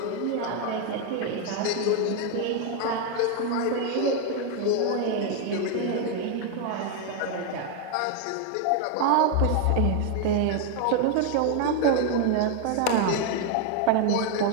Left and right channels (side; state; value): both; different; correlation 0.01